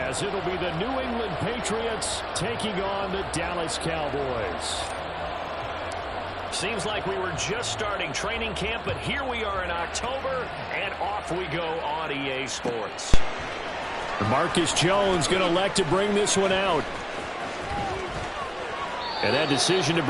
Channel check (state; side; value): identical; both; correlation 1.00